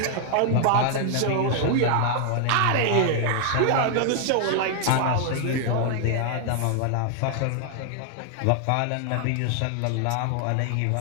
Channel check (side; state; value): both; different; correlation 0.00